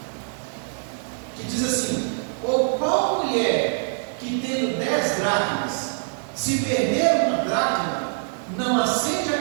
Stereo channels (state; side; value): silent; left; digital silence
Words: que diz assim: ou qual mulher que tendo 10 dracmas, se perder uma dracma, não acende a